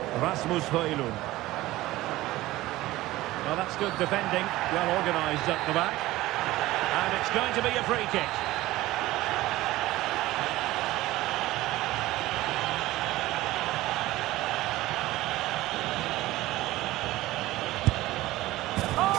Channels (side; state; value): left; quieter; 17.3 dB